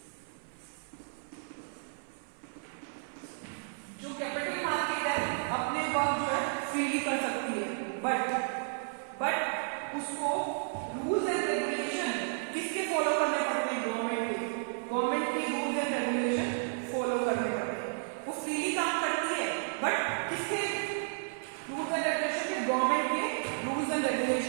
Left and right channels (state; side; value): silent; left; 56 dB below the other